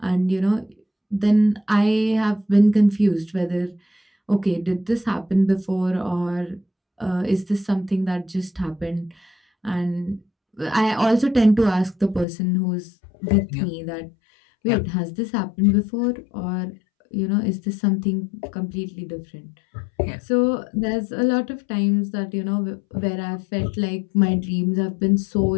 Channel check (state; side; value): drops out; right; at 12.2 s